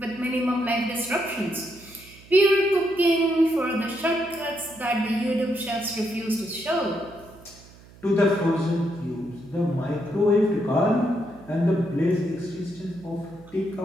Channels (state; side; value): noise; right; hum, 22 dB below the sound